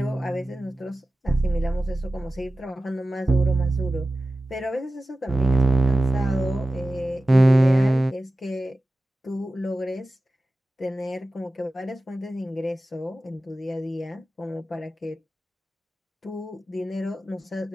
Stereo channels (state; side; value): normal; both; correlation 0.95